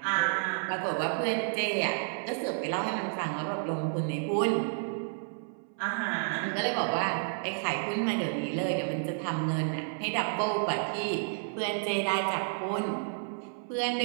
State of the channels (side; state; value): left; silent; 57 dB below the other